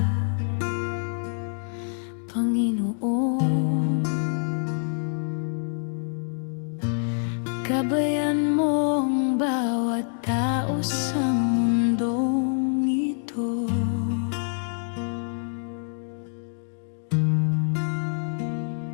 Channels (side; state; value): right; silent; digital silence